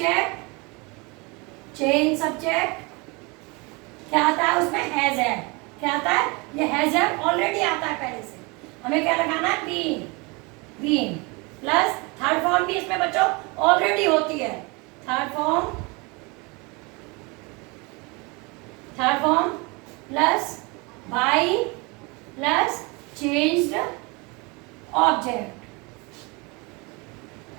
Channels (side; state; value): left; quieter; 27.9 dB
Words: क्या आता है उसमें? Has had. क्या आता है? ये हैज हैड ऑलरेडी आता है पहले से। हमें क्या लगाना है? बीइंग प्लस थर्ड फॉर्म भी इसमें बच्चों ऑलरेडी होती है। Third form plus by plus changed object.